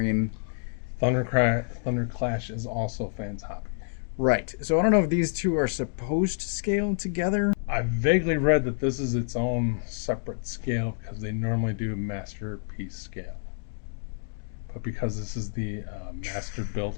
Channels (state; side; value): silent; right; digital silence